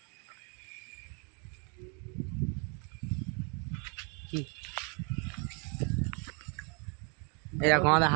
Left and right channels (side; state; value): left; quieter; 36.8 dB